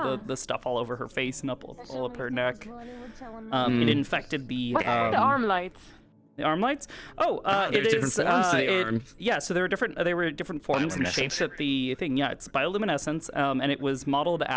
the stuff all over her face and all up her neck. It infected the What's the arm lights? The arm lights? Oh, it different is. forms to the arm. Yeah, so there were different. They were different forms and shapes at the thing. Yeah, it's bioluminescence, and it was modeled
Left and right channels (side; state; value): both; identical; correlation 1.00